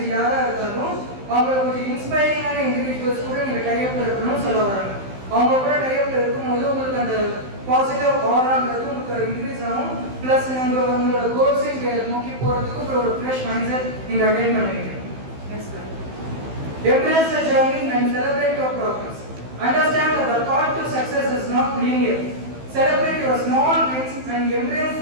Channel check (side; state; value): left; late; 15 ms